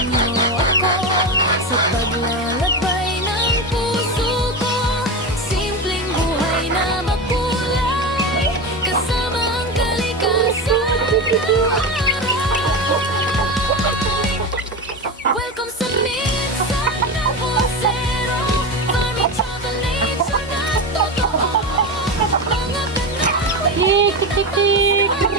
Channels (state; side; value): normal; both; correlation 0.20